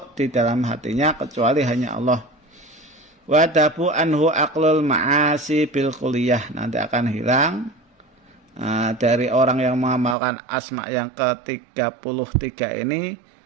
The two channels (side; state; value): left; drops out; at 10.2 s